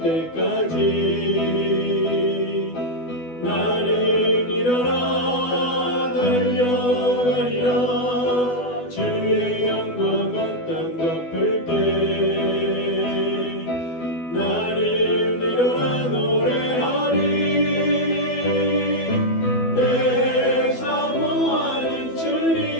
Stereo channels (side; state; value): right; late; 12 ms